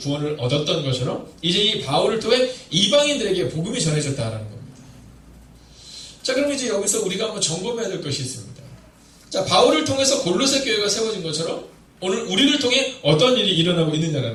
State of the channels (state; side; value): identical; both; correlation 1.00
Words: 얻었던 것처럼 이제 이 바울을 통해 이방인들에게 복음이 전해졌다라는 겁니다. 자, 그럼 이제 여기서 우리가 한번 점검해야 될 것이 있습니다. 자, 바울을 통해서 골로새 교회가 세워진 것처럼 오늘 우리를 통해 어떤 일이 일어나고